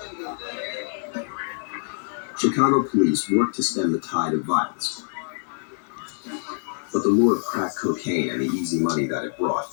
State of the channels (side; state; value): right; silent; digital silence